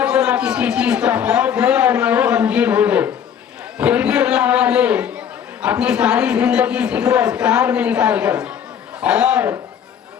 کو نہ کسی چیز کا خوف ہے اور نہ وہ غمگین ہو گئے۔ پھر بھی اللہ والے اپنی ساری زندگی ذکر و اذکار میں نکال کر اور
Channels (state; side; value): quieter; right; 8.5 dB